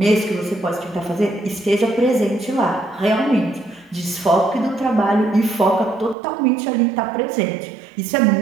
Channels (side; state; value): left; drops out; at 6.2 s